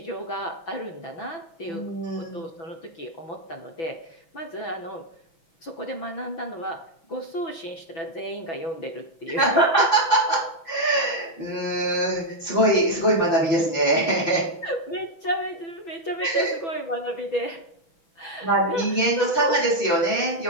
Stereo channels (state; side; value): late; right; 6.0 ms